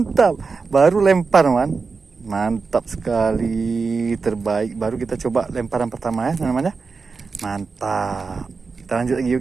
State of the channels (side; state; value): left; quieter; 4.7 dB